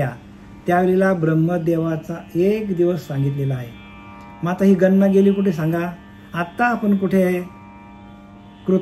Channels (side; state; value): both; identical; correlation 1.00